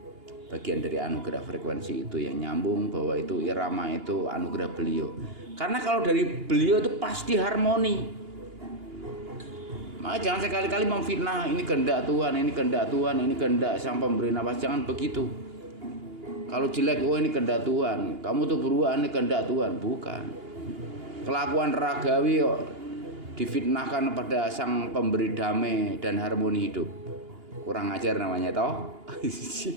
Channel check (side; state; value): left; late; 2.8 ms